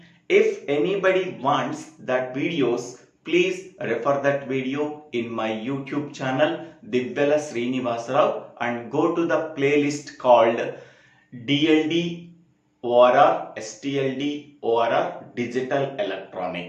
If anybody wants that videos, please refer that video in my YouTube channel SRINIVASA and go to the playlist called DLD or STLD or Digital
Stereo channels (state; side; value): identical; both; correlation 1.00